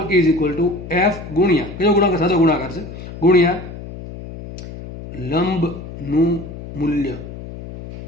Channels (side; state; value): left; noise; hum, 12 dB below the sound